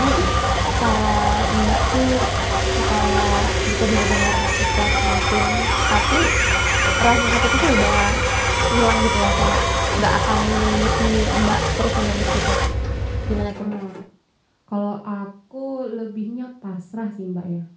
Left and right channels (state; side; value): identical; both; correlation 1.00